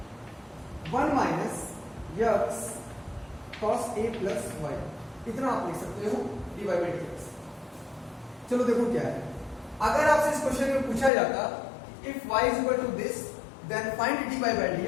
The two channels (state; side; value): drops out; right; at 11.1 s